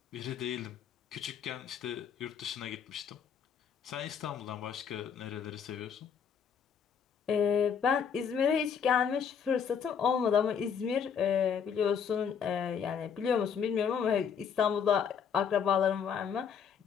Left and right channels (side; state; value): right; quieter; 7.2 dB